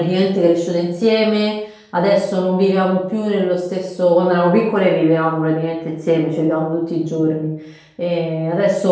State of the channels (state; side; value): identical; both; correlation 1.00